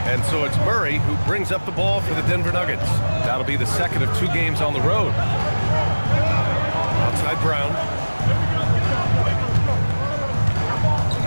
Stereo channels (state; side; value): inverted; both; correlation -1.00